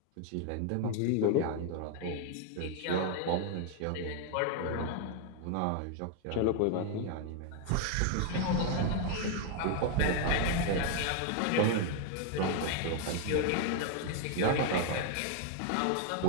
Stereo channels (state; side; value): different; both; correlation 0.00